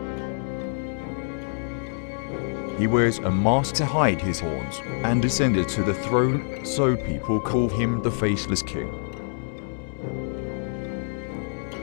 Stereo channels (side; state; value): right; silent; 61 dB below the other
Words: He wears a mask to hide his horns and ascended to the throne, so people call him the Faceless King.